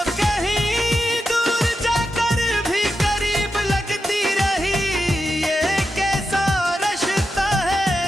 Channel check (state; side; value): normal; both; correlation 0.88